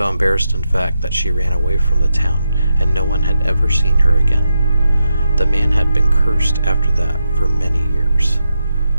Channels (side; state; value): both; inverted; correlation -0.86